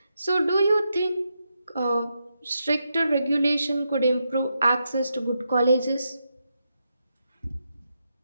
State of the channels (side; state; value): both; inverted; correlation -0.84